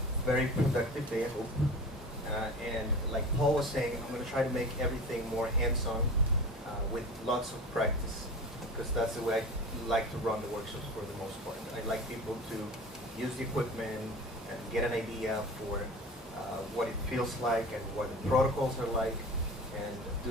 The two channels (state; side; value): normal; both; correlation 0.35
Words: very productive day, I hope. And like Paul was saying, I'm going to try to make everything more hands-on with lots of practice, because that's the way I like to run the workshops for the most part. I like people to use the equipment and get an idea for what it feels like and what the protocols are like, and